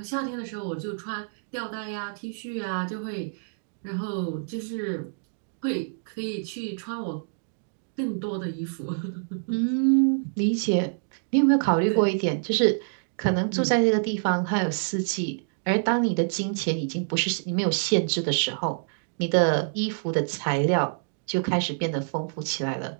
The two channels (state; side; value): silent; left; digital silence